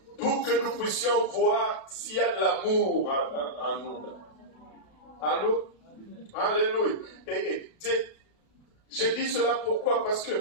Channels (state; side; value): late; right; 32 ms